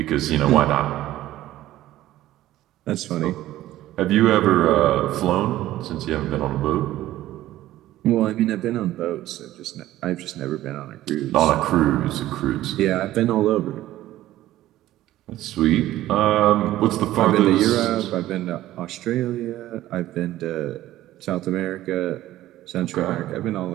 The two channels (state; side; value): quieter; left; 14.7 dB